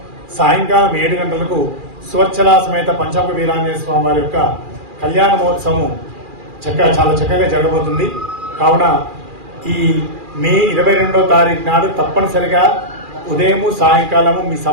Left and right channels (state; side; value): late; left; 2.4 ms